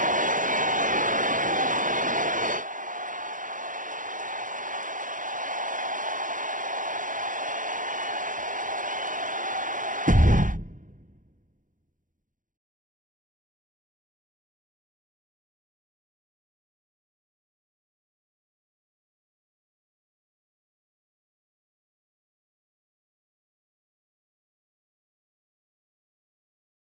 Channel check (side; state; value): left; late; 0.38 ms